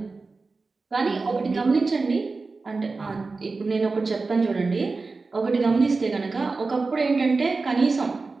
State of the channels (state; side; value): quieter; left; 3.9 dB